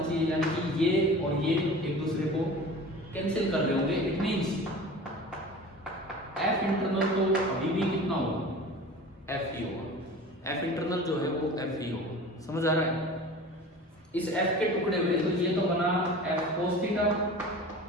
चाहिए, यानी कि ये और ये एक दूसरे को कैंसिल कर रहे होंगे। इट मींस एफ इंटरनल तो अभी भी कितना होगा, एफ ही होगा। एफ इंटरनल जो है वो एफ ही होगा, समझ आ रहा है। इस एफ के टुकड़े हुए, तो ये तो बना एफ कोस थीटा,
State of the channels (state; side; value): normal; both; correlation 0.38